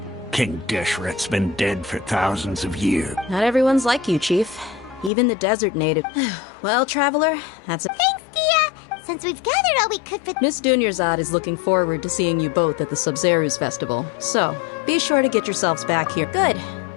King Dishret's been dead for thousands of years. Not everyone's like you, Chief. Even the desert native. Well, Traveler, that's it. Thanks, Dia! Since we've gathered all we could for... Miss Dunyarzad is looking forward to seeing you both at the Sub-Zeru's festival. So, be sure to get yourselves back here. Good.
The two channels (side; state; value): right; drops out; at 5.1 s